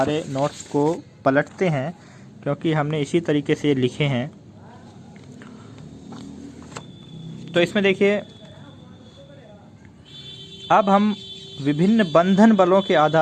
नोट्स को पलटते हैं, क्योंकि हमने इसी तरीके से लिखे हैं। तो इसमें देखिए, अब हम विभिन्न बंधन बलों के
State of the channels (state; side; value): identical; both; correlation 1.00